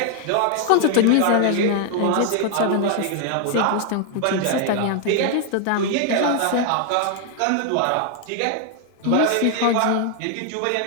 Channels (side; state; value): both; different; correlation 0.00